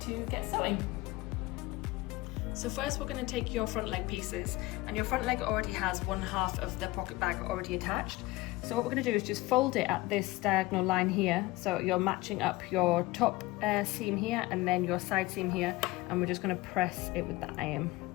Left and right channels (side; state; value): right; quieter; 19.9 dB